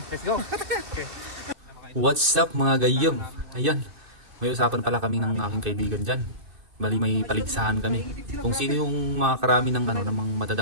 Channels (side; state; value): left; late; 2.5 ms